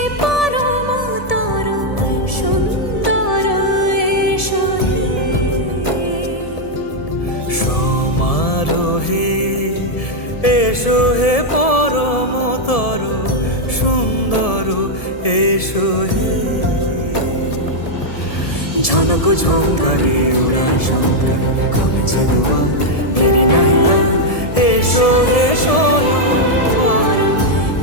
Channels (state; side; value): late; right; 1.7 ms